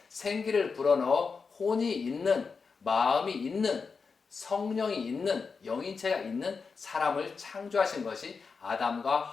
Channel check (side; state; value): right; quieter; 5.0 dB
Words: 생기를 불어넣어 혼이 있는, 마음이 있는, 성령이 있는, 영인체가 있는 사람을 창조하신 것이 아담과